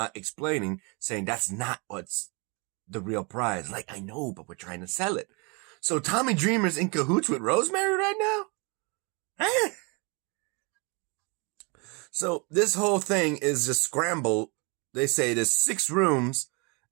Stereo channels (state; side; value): quieter; left; 31.0 dB